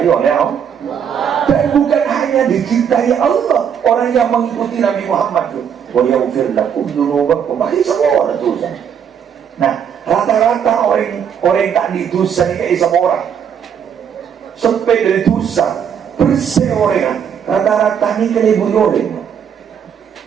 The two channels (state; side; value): quieter; left; 7.9 dB